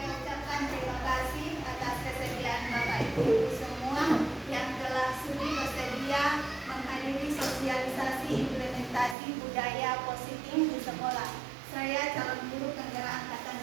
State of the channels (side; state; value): left; drops out; at 9.2 s